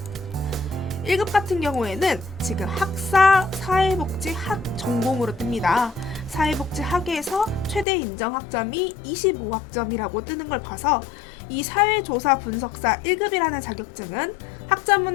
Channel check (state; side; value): drops out; right; at 7.9 s